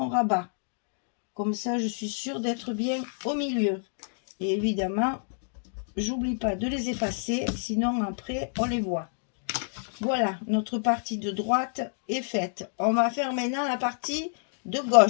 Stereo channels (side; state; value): right; silent; digital silence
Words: rabat. Comme ça, je suis sûre d'être bien au milieu. Et évidemment, j'oublie pas de les effacer, sinon après, on les voit. Voilà, notre partie de droite est faite. On va faire maintenant la partie de